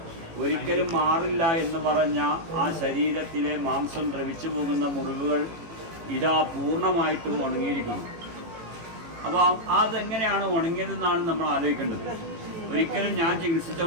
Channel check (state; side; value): late; left; 18 ms